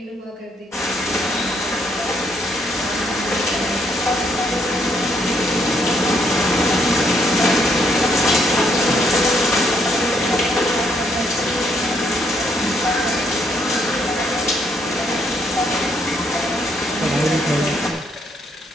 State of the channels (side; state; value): both; normal; correlation 0.71